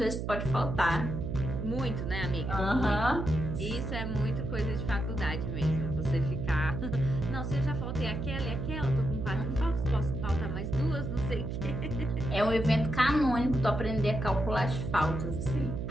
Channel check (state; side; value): noise; right; hum, 4 dB below the sound